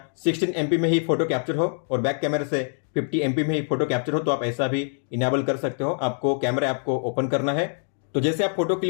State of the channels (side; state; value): right; silent; digital silence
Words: 16 MP में ही फोटो कैप्चर हो और बैक कैमरा से 50 MP में ही फोटो कैप्चर हो तो आप ऐसा भी इनेबल कर सकते हो। आपको कैमरा ऐप को ओपन करना है, तो जैसे आप फोटो